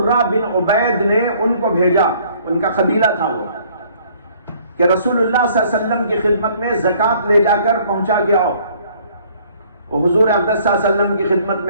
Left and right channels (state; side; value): inverted; both; correlation -0.59